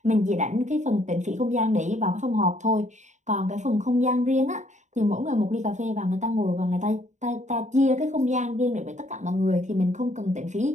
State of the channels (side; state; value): left; late; 0.34 ms